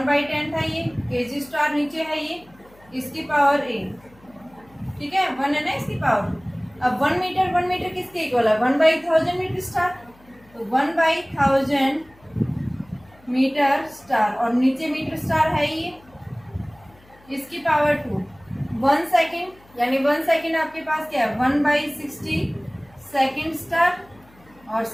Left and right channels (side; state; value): left; noise; hum, 27 dB below the sound